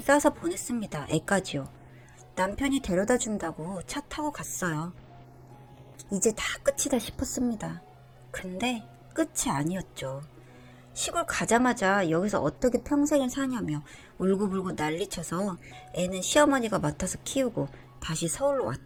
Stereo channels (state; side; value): identical; both; correlation 1.00